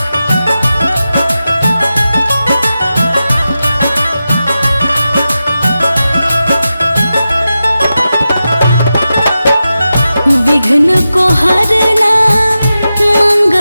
विघ्न को हरना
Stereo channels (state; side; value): inverted; both; correlation -0.92